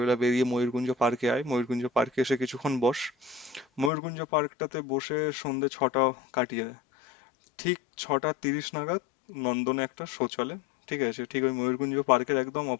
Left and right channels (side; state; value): right; drops out; at 3.9 s